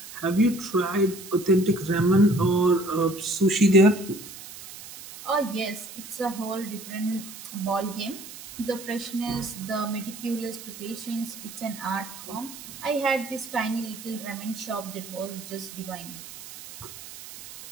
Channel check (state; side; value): noise; right; hiss, 14 dB below the sound